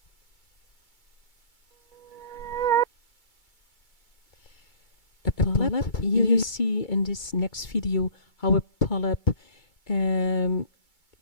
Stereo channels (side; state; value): right; late; 2.3 ms